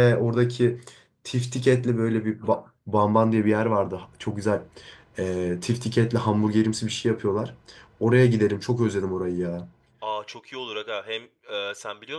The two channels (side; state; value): both; identical; correlation 1.00